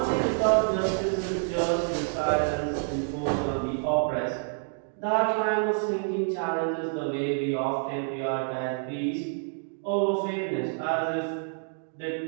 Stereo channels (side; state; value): left; silent; digital silence